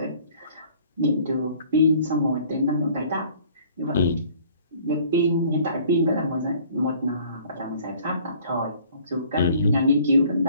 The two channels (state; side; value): inverted; both; correlation -0.54